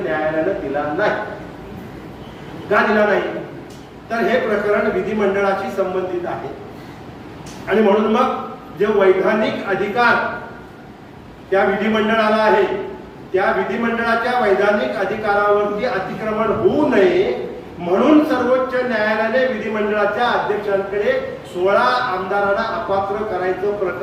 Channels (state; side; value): identical; both; correlation 1.00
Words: दिला नाही। का दिला नाही? तर हे प्रकरण विधिमंडळाशी संबंधित आहे आणि म्हणून मग जे वैधानिक अधिकार त्या विधिमंडळाला आहे, त्या विधिमंडळाच्या वैधानिक अधिकारावरती अतिक्रमण होऊ नये म्हणून सर्वोच्च न्यायालयाने विधिमंडळाच्या अध्यक्षांकडे 16 आमदारांना अपात्र करायचं